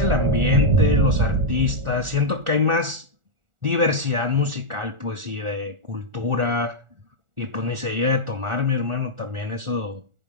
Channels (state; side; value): late; left; 1.4 ms